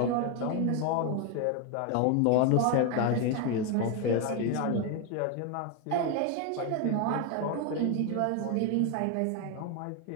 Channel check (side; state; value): both; different; correlation 0.01